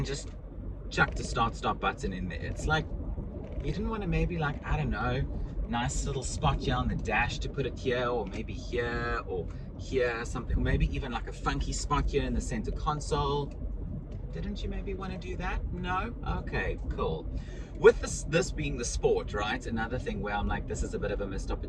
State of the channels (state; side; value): identical; both; correlation 1.00